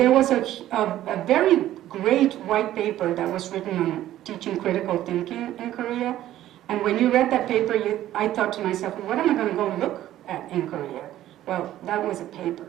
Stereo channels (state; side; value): quieter; left; 13.3 dB